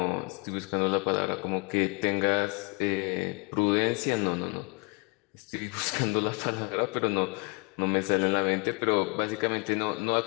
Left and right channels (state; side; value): quieter; right; 33.5 dB